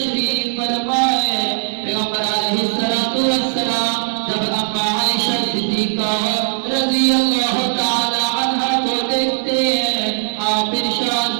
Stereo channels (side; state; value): left; silent; digital silence